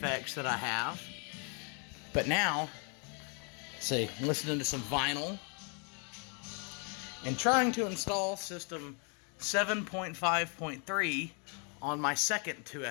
that I have. But now, see, I'm listening to some vinyl and trying to install system 7.5.3 on my second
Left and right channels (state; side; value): quieter; right; 37.4 dB